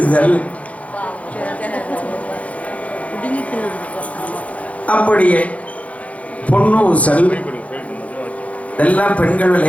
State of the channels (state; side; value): late; right; 0.066 ms